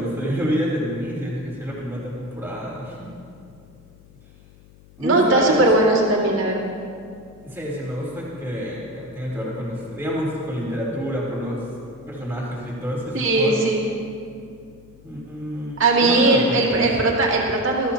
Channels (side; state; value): left; noise; hum, 24 dB below the sound